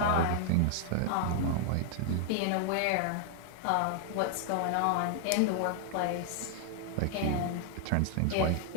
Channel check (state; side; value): different; both; correlation 0.00